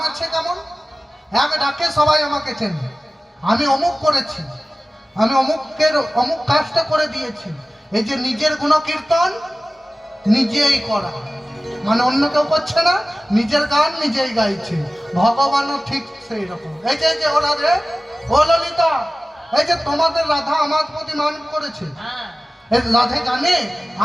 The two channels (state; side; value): normal; both; correlation 0.97